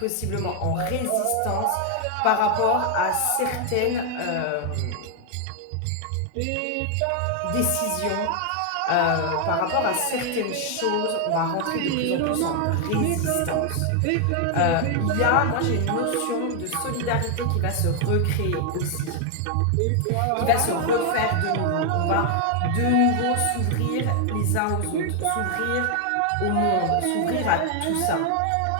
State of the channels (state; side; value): different; both; correlation 0.00